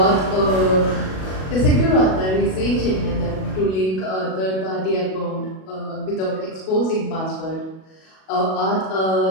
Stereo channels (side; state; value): right; late; 37 ms